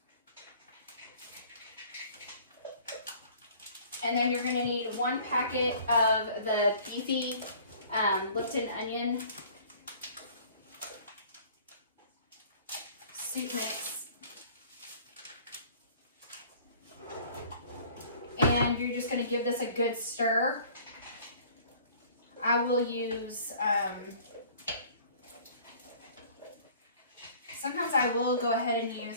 And then you're going to need 1 packet of the beefy Lipton onion soup mix. And you're just going to give this a good stir. I will use, sometimes I will go ahead and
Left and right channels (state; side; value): inverted; both; correlation -0.51